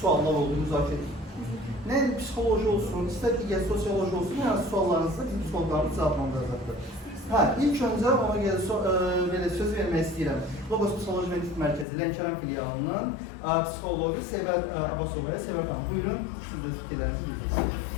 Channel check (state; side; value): drops out; right; at 11.9 s